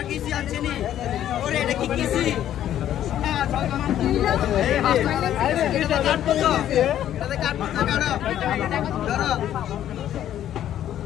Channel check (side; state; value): right; quieter; 11.4 dB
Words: किसी अच्छी नहीं और ये देखी किसी